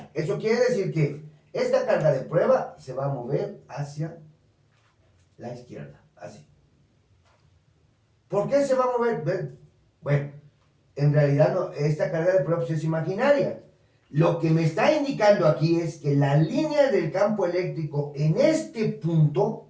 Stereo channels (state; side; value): identical; both; correlation 1.00